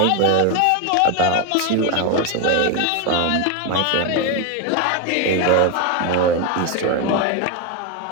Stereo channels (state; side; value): different; both; correlation 0.02